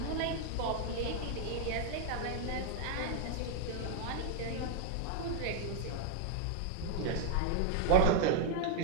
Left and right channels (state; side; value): different; both; correlation 0.00